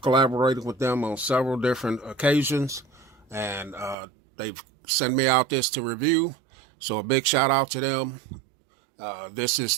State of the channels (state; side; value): drops out; left; at 4.0 s